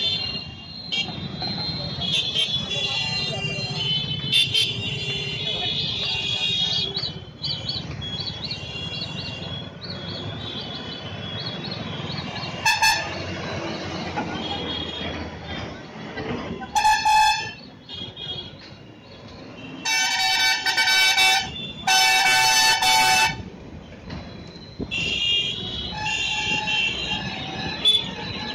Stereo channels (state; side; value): identical; both; correlation 1.00